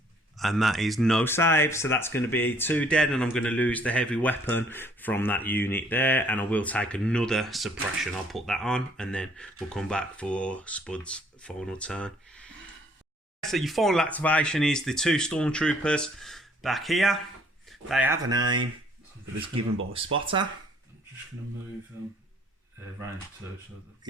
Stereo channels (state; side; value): normal; both; correlation 0.61